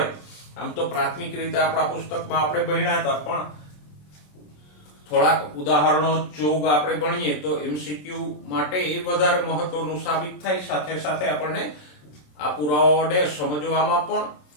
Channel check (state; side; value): late; right; 27 ms